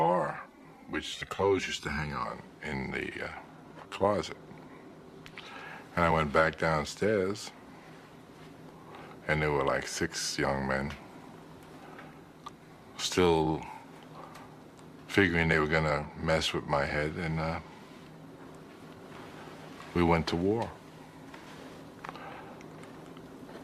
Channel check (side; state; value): both; identical; correlation 1.00